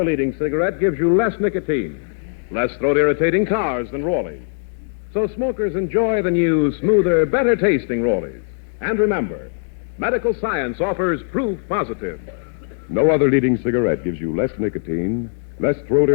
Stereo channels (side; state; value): right; silent; 62 dB below the other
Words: leading cigarette gives you less nicotine, less throat-irritating tars than Rollies. So smokers enjoy the new, smoother, better-tasting Rollies. And remember, medical science offers proof positive. No other leading cigarette gives you less nicotine, less